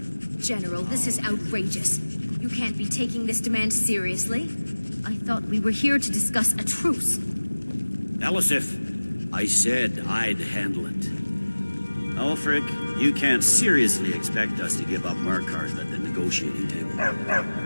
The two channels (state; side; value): inverted; both; correlation -1.00